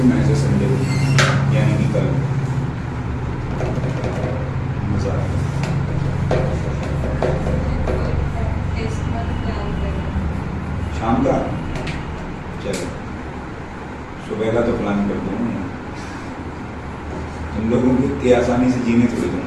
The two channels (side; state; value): both; identical; correlation 1.00